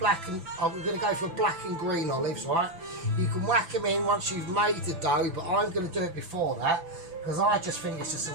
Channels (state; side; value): late; left; 6.0 ms